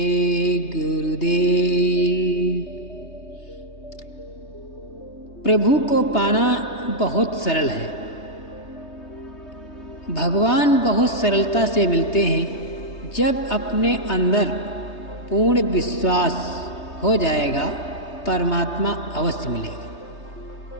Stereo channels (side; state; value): right; late; 3.2 ms